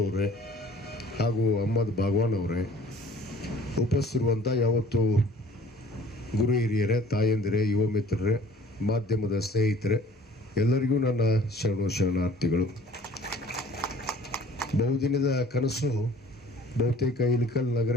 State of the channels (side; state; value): both; normal; correlation 0.50